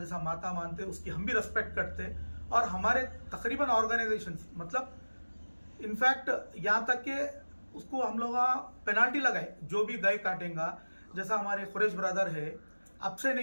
माता मानते, उसकी हम भी रेस्पेक्ट करते। और हमारे तकरीबन ऑर्गेनाइजेशंस, मतलब इनफैक्ट यहाँ तक कि उसको हम लोग पेनाल्टी लगाए, जो भी गाय काटेगा, जैसा हमारे खुरेश ब्रदर है, अब से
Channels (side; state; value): both; inverted; correlation -1.00